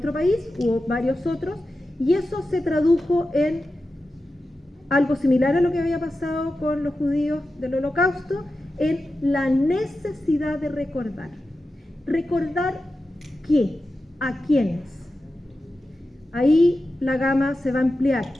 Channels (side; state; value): both; normal; correlation 0.92